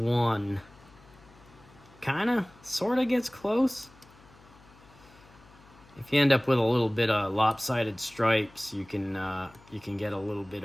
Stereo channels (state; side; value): noise; left; hum, 25 dB below the sound